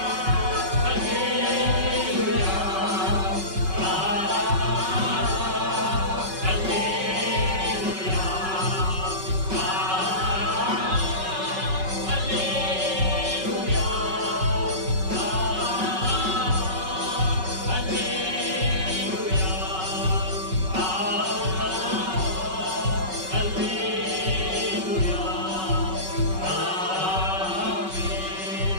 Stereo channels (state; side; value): late; left; 5.3 ms